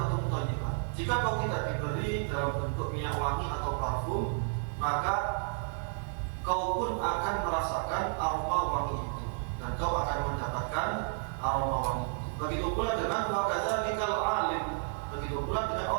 thayyibah, jika kau tidak diberi dalam bentuk minyak wangi atau parfum, maka kau pun akan merasakan aroma wangi itu, dan kau akan mendapatkan aroma wangi itu. Begitu pula dengan wa kadzalikal alim, begitu pula dengan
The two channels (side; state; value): left; silent; 57 dB below the other